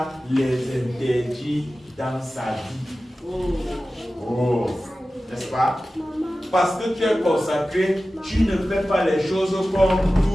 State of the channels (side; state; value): both; normal; correlation 0.95